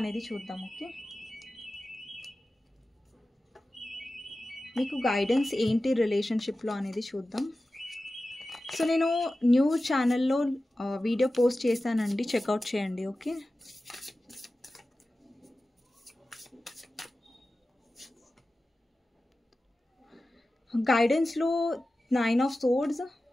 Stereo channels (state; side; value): normal; both; correlation 0.95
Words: చూద్దాం. ఓకే, మీకు గైడెన్స్ ఏంటి రిలేషన్షిప్లో అనేది చూద్దాం. సో నేను న్యూ ఛానల్లో వీడియో పోస్ట్ చేశానండి, చెక్అవుట్ చేయండి. ఓకే, గైడెన్స్లో 9 of swords,